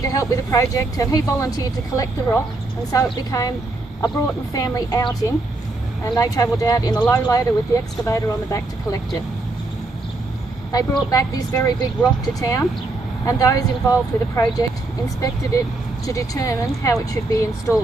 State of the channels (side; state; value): left; quieter; 3.0 dB